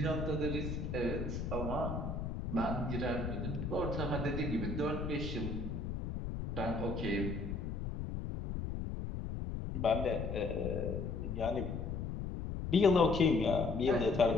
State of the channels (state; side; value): noise; left; rumble, 4 dB below the sound